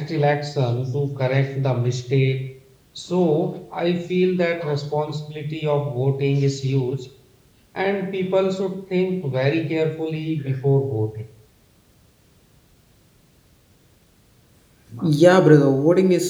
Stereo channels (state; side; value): identical; both; correlation 1.00